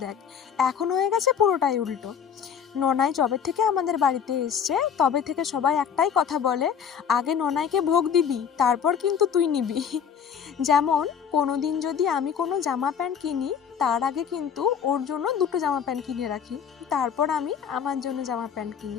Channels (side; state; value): right; quieter; 7.7 dB